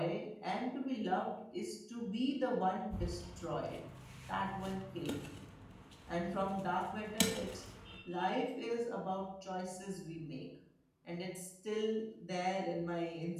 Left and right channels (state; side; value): identical; both; correlation 1.00